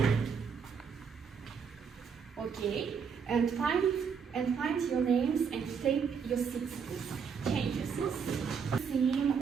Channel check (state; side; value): quieter; left; 6.4 dB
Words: Okay. And find your names and take your seats, please. Change your seats. Theme